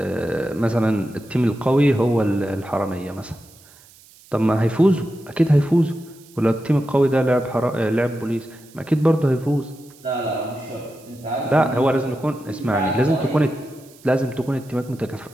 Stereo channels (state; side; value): noise; right; hiss, 25 dB below the sound